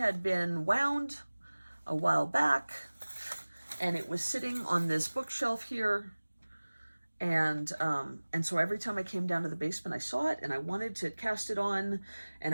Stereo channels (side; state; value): both; inverted; correlation -1.00